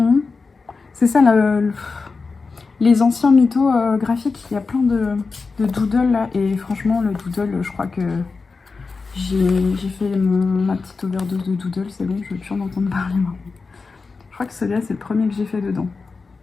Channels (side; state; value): right; quieter; 4.4 dB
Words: C'est ça, les anciens mythos graphiques. Il y a plein de doodles là. Et franchement, le doodle, je crois que j'ai fait ma petite overdose de doodle. C'est bon, je veux plus en entendre parler maintenant. Je crois que celui-là, c'est le premier que j'ai fait dedans.